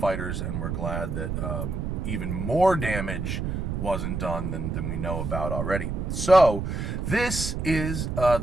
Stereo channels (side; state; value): right; noise; rumble, 3 dB below the sound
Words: and we're glad that even more damage wasn't done than we know about already. So this is